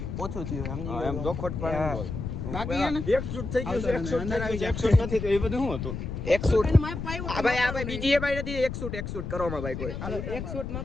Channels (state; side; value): noise; left; rumble, 6 dB below the sound